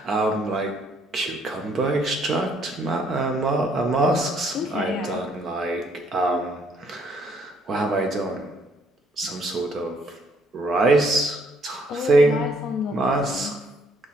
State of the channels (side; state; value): both; normal; correlation 0.67